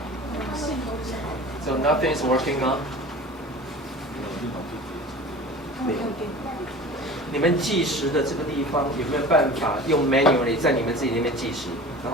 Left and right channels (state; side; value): normal; both; correlation 0.39